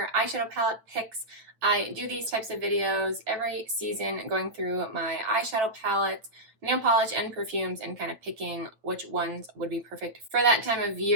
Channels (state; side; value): late; left; 8.9 ms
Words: eyeshadow palette picks. I do these types of videos every season, going through my eyeshadow palettes, nail polish, and perfumes, and kind of picking which ones would be perfect for that time of